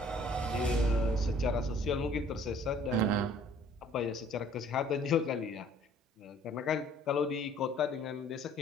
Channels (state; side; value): normal; both; correlation 0.56